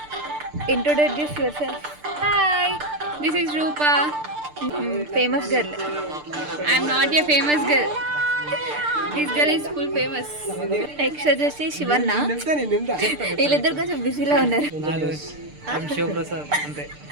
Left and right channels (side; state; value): left; late; 6.7 ms